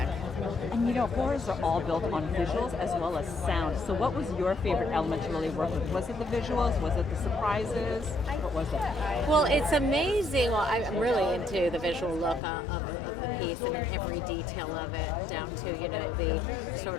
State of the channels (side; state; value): right; drops out; at 12.4 s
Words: And horrors are all built on visuals as well as sound. So what was your favorite element to really work with? Was it the visuals? Was it the surprises? What was it? Well, it's amazing. Well, I'm really into the visual look of the piece and in every detail of it, down to, the sort